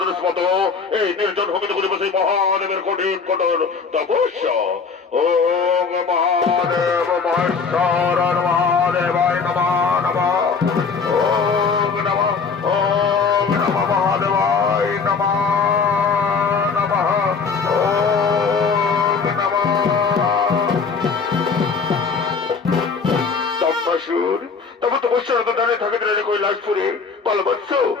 মতো এই নির্জন ভূমিতে করে বসে মহাদেবের কঠিন কঠোর তপস্যা। ওম মহাদেব মহেশ্বর মহাদেবায় নমঃ নমঃ। ওম নমঃ মহাদেবায় নমঃ নমঃ। ওম নমঃ। দম্বাসুর, তবে তপস্যারত দাঁড়িয়ে থাকে দাঁড়িয়ে কৈলাসপুরে বলবৎস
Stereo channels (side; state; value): right; quieter; 5.2 dB